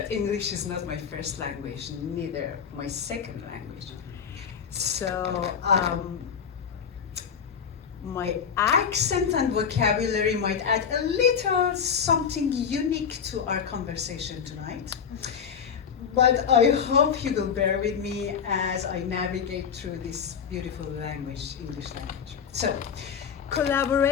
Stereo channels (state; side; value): quieter; right; 7.1 dB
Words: English is not my first language, neither my second language. So my accent and vocabulary might add a little something unique to our conversation tonight. But I hope you will bear with me as I navigate through this beautiful language, English language. So,